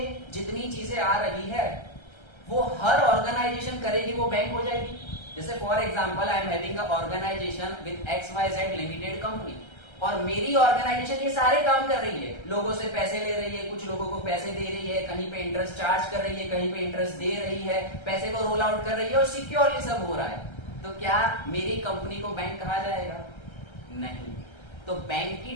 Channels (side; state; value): right; late; 1.3 ms